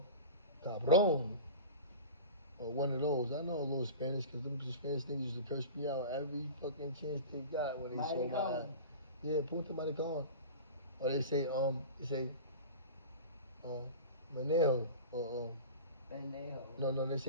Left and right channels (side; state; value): both; inverted; correlation -0.33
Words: cabron. Or one of those. I know a little Spanish because them Spanish niggas used to curse me out every fucking chance they got when they saw my eye. Yeah, punta maricon. Or they say, manejo. Or, Bendejo. no, they